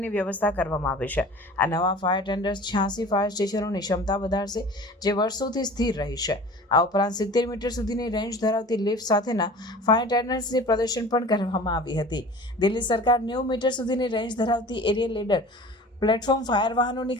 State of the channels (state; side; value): normal; both; correlation 0.41